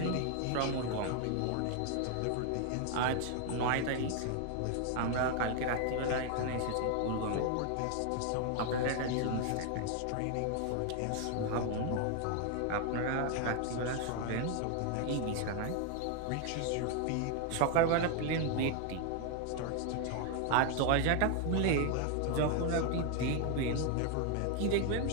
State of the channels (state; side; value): different; both; correlation 0.00